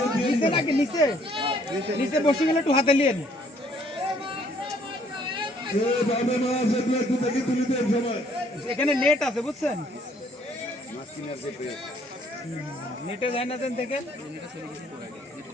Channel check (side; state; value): both; normal; correlation 0.63